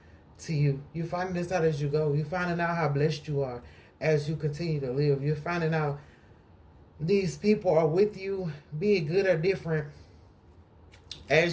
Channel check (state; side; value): identical; both; correlation 1.00